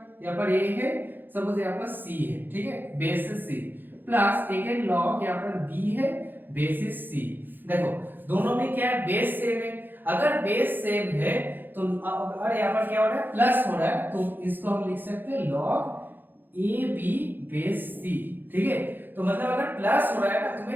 पर a है, सपोज यहाँ पर c है, ठीक है, basis c plus again log यहाँ पर b है, बेसिस c। देखो दोनों में क्या है, बेस सेम है। अगर बेस सेम है तो अगर यहाँ पर क्या हो रहा है, प्लस हो रहा है, तो इसको हम लिख सकते हैं लॉग ab बेस c। ठीक है, तो मतलब अगर प्लस हो रहा है ना,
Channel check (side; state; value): left; late; 0.092 ms